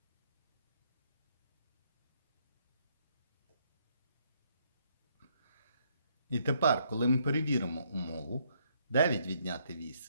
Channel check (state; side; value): inverted; both; correlation -0.71